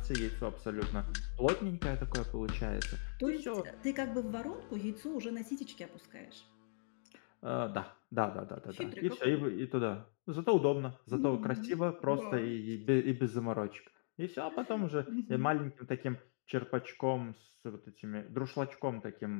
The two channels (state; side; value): silent; right; digital silence